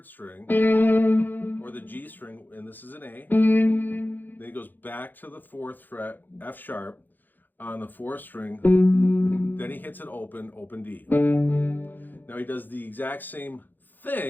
string, or the G string, and this is an A. Then he goes back to the 4th fret, F sharp, on the 4th string. Then he hits it open D. Now he does the exact same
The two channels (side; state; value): right; late; 0.088 ms